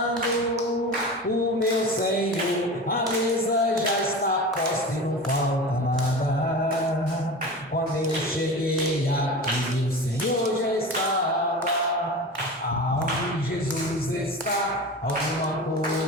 o meu Senhor. A mesa já está posta e não falta nada. Quando eu cheguei aqui, o Senhor já estava. Aonde Jesus está, alguma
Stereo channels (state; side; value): normal; both; correlation 0.31